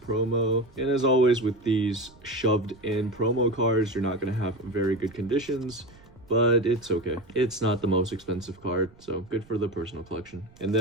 And as always with these shoved in promo cards, you're not gonna have very good conditions, but it's okay. It's not the most expensive card, so good for the personal collection. And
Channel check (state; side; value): noise; right; rumble, 25 dB below the sound